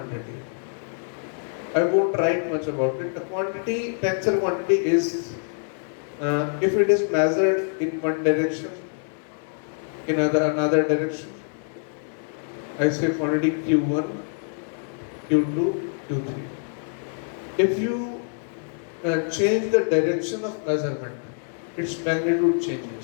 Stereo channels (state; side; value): silent; right; 62 dB below the other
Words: I won't write much about it. The quantity, tensor quantity is, if it is measured in one direction, in another direction, I say quantity Q1, Q2, Q3. If you change the direction of measurement, its magnitude